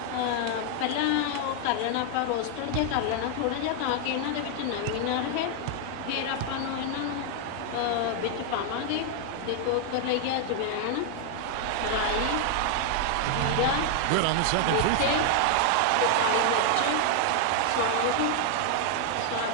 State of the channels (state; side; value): different; both; correlation 0.00